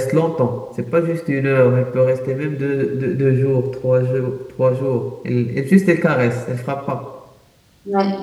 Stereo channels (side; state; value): both; identical; correlation 1.00